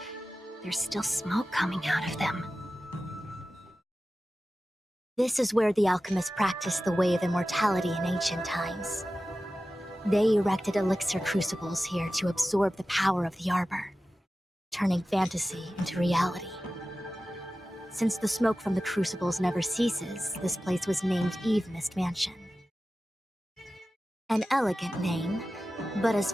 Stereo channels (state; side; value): normal; both; correlation 0.94